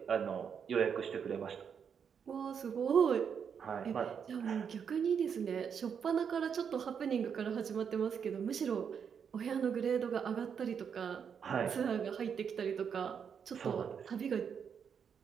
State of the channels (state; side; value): quieter; left; 7.1 dB